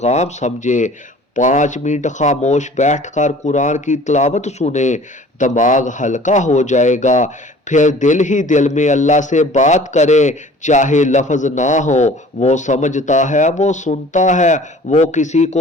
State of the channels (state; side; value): normal; both; correlation 0.48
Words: سمجھے۔ 5 منٹ خاموش بیٹھ کر قرآن کی تلاوت سنیں، دماغ ہلکا ہو جائے گا۔ پھر دل ہی دل میں اللہ سے بات کریں، چاہے لفظ نہ ہو، وہ سمجھتا ہے، وہ سنتا ہے، وہ کسی